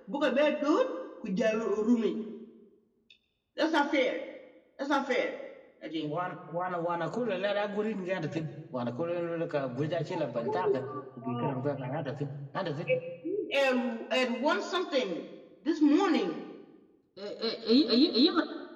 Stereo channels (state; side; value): identical; both; correlation 1.00